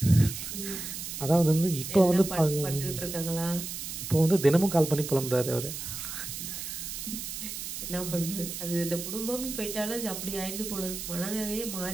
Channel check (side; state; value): right; noise; hiss, 7 dB below the sound